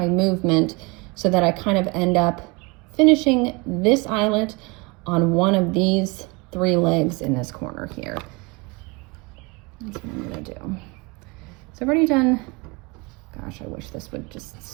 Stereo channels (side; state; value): left; quieter; 27.7 dB